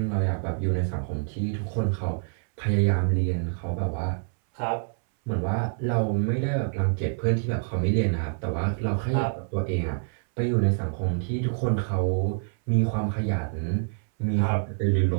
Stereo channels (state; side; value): silent; left; 61 dB below the other